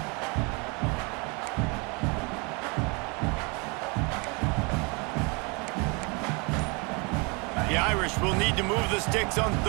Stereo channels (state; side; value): quieter; left; 30.5 dB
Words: The Irish will need to move the sticks on